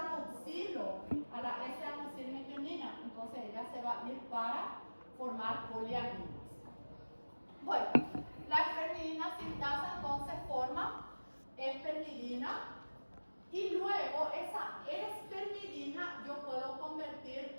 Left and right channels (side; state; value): both; inverted; correlation -1.00